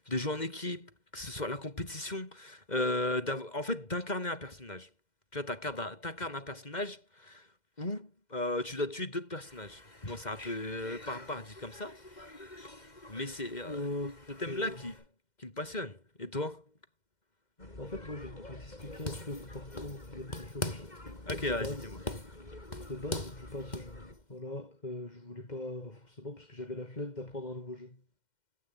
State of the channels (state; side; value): late; right; 2.1 ms